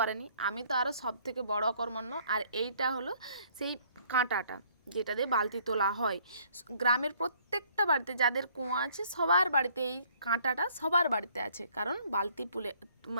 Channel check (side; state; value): both; inverted; correlation -0.61